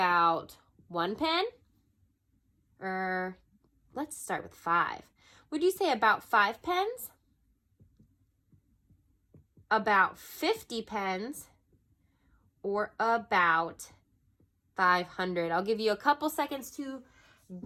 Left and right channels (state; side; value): identical; both; correlation 1.00